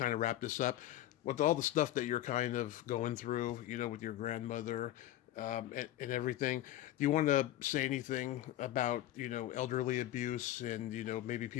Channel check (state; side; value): quieter; right; 13.8 dB